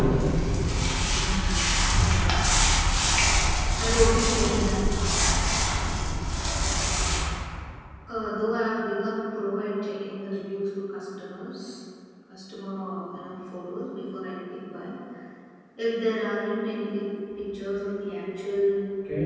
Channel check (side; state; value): both; identical; correlation 1.00